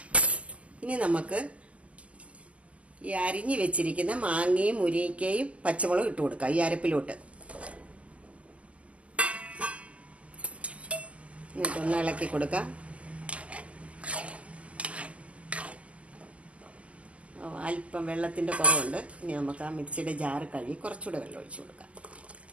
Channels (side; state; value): left; late; 0.064 ms